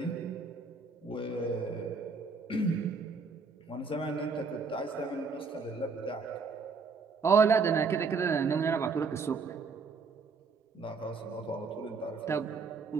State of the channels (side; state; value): left; quieter; 4.8 dB